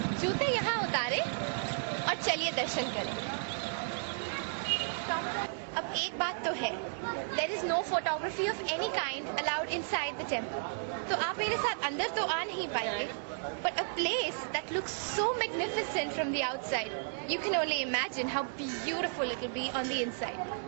जूते यहाँ उतारे और चलिए दर्शन करें. अब एक बात तो है, there is no photography of any kind allowed inside the temple. तो आप मेरे साथ अंदर तो आ नहीं पाएंगे, but a place that looks so magnificent from the outside, you can only imagine how beautiful it will be on the inside.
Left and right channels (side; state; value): left; silent; digital silence